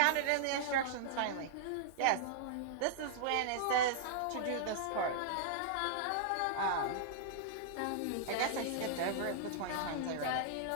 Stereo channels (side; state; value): both; different; correlation -0.02